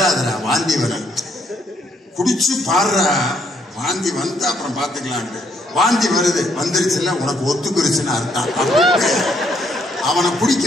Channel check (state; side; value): normal; both; correlation 0.71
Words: வாந்தி வரேன், குடிச்சு பாடுறா, வாந்தி வந்தா அப்புறம் பார்த்துக்கலான்ட்டு. வாந்தி வருது, வந்துருச்சுல உனக்கு ஒத்துக்குருச்சுன்னு அர்த்தம். அவனை குடிக்க